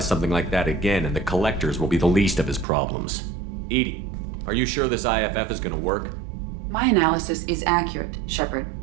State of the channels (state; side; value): drops out; left; at 2.7 s